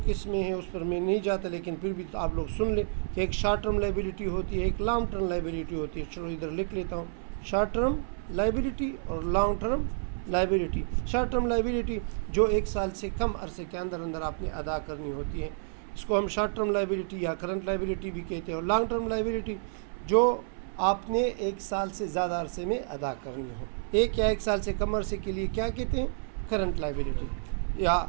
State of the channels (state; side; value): silent; left; 58 dB below the other